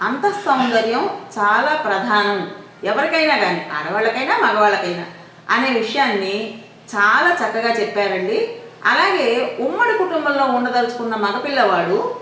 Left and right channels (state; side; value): identical; both; correlation 1.00